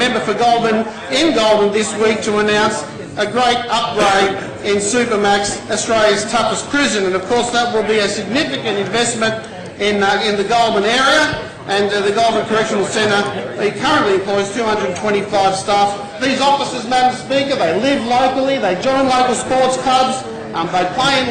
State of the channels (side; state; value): both; identical; correlation 1.00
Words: for Goulburn in Goulburn this week to announce a great upgrade in Supermax, Australia's toughest prison, and of course that will be a significant investment in the Goulburn area, and the Goulburn Correctional Centre currently employs 225 staff. These officers, Madam Speaker, they live locally, they join local sports clubs, they play in